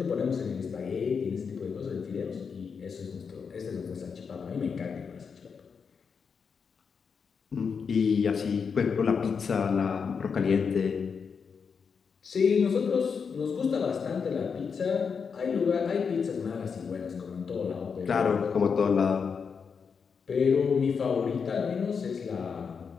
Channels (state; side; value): quieter; right; 6.0 dB